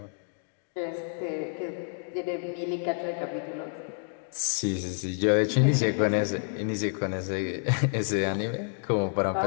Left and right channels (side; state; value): right; silent; digital silence